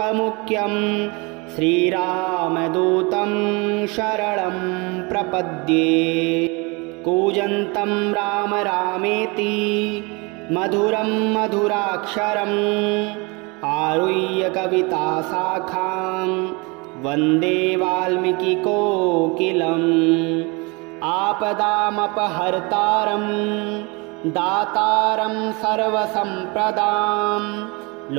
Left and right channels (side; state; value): left; quieter; 28.2 dB